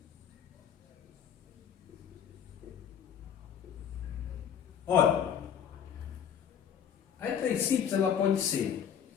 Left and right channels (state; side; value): quieter; right; 8.4 dB